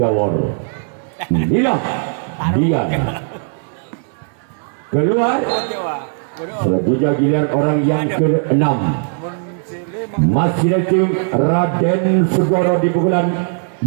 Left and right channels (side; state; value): left; silent; digital silence